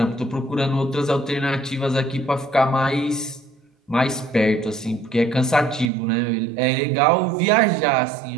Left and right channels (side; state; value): left; drops out; at 5.9 s